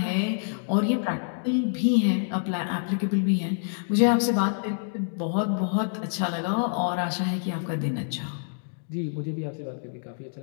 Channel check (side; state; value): right; silent; digital silence